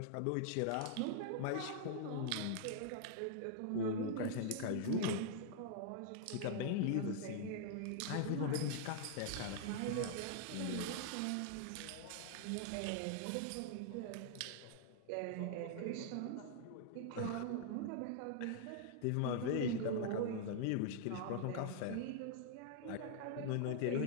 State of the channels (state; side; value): different; both; correlation -0.01